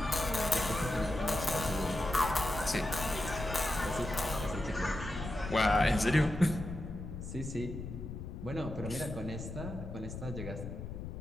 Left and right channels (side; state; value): left; noise; rumble, 8 dB below the sound